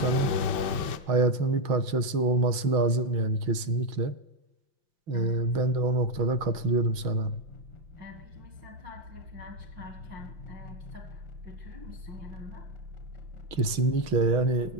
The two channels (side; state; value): left; late; 5.8 ms